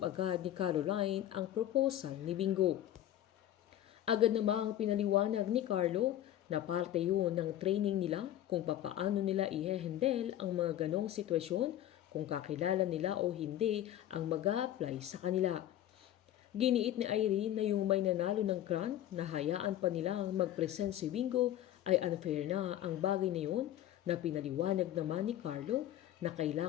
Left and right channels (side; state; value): right; quieter; 12.3 dB